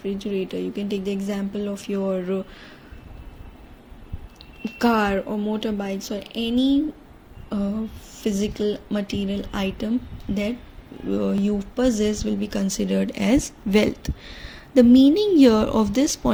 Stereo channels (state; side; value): identical; both; correlation 1.00